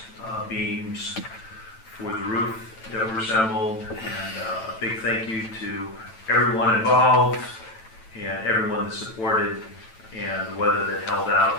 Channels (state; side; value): late; right; 9.0 ms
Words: beams, for the roof that were assembled, and a big thank you to everyone involved and everyone that supported, and the weather that held